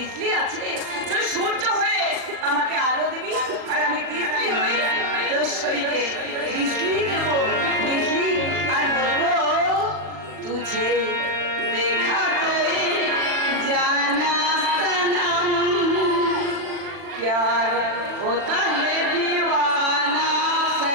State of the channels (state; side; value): late; left; 39 ms